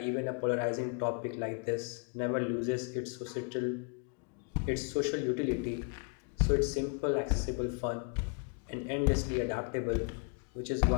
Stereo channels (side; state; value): right; quieter; 39.5 dB